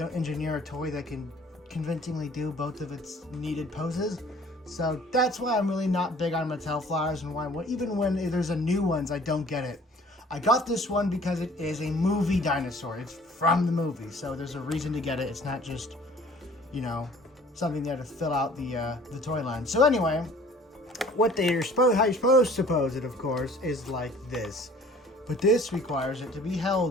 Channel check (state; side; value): normal; both; correlation 0.52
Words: engineer a toy that can convincingly do both of its needed poses. So that's why I'm really not big on Mattel flyers, and why even when there's a new ones, I don't get it. I got this one because it is a movie dinosaur. It's from the movie, so there's a reason to get it. It's not just, you know, something there to fill out the toy line. So anyway, how you're supposed to pose it, of course, is like this. But this requires it to be